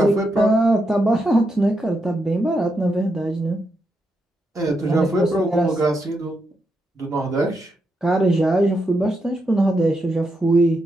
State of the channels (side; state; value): both; normal; correlation 0.83